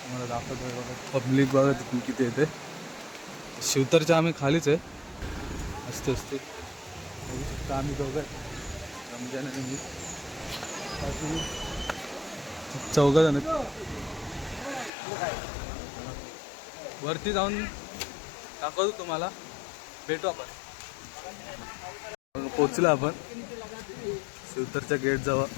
तुम्हाला दाखवतो बघा पब्लिक बघा तिथून किती येते. शिवतरच्या आम्ही खालीच आहे. असते असते बघू शकता आम्ही दोघं रमजान आणि मी चौघं जण वरती जाऊन दाखवतो तुम्हाला. भेटू आपण. पोचलो आपण शिवतरच्या गेट जवळ.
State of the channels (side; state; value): right; drops out; at 14.9 s